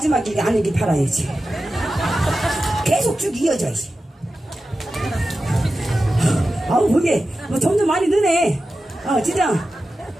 아니길 바라야지. 계속 쭉 이어져야지. 아우 그게 뭐 점점 많이 느네. 진짜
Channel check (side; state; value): both; normal; correlation 0.93